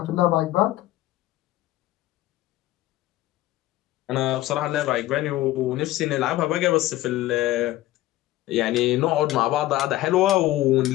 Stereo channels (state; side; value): quieter; right; 15.8 dB